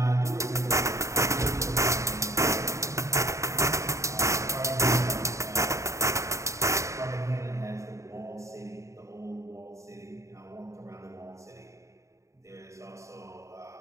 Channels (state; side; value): late; left; 0.15 ms